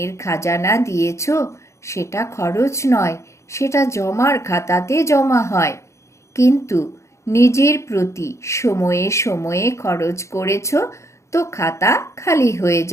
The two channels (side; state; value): right; late; 0.14 ms